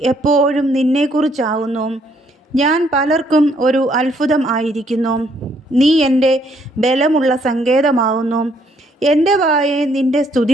എപ്പോഴും നിന്നെക്കുറിച്ചാവുന്നു. ഞാൻ പലർക്കും ഒരു അത്ഭുതം ആയിരിക്കുന്നു. നീ എൻ്റെ ബലമുള്ള സങ്കേതമാവുന്നു. എൻ്റെ വായെ നിൻ്റെ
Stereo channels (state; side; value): normal; both; correlation 0.68